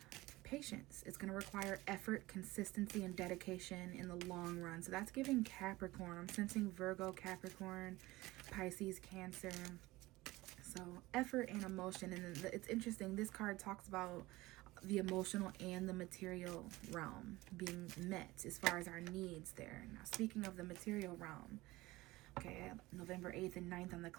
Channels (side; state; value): left; quieter; 19.6 dB